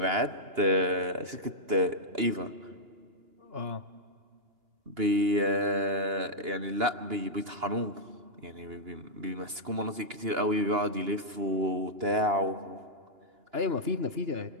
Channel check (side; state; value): left; late; 2.9 ms